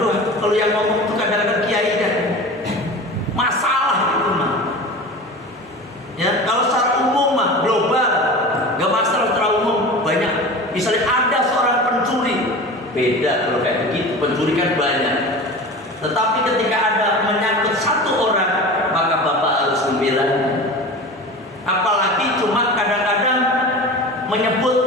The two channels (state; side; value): normal; both; correlation 0.33